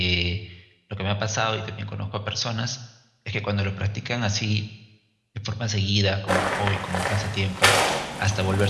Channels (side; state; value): both; identical; correlation 1.00